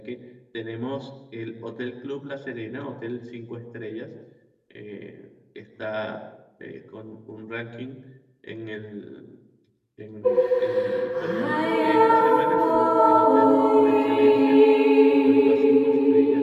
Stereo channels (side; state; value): both; identical; correlation 1.00